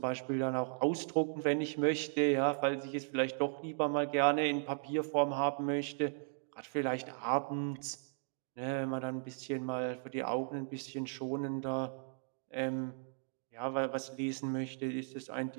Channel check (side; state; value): left; silent; digital silence